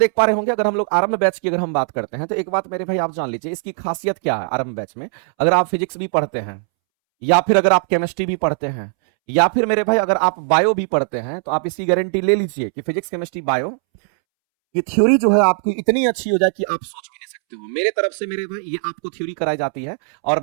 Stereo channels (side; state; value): left; silent; 66 dB below the other